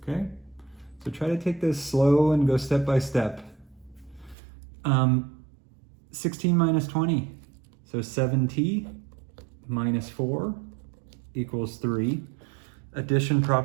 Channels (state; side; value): drops out; left; at 4.4 s